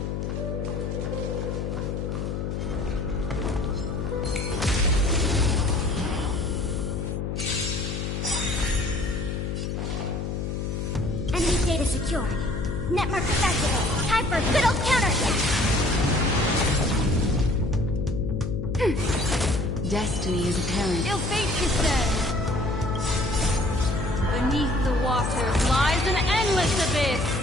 secured. Net markers activated. Time for good old counterattack. Destiny is apparent. Ill fate descends. Beneath the waters lies an endless abyss.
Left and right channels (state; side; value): noise; left; hum, 3 dB below the sound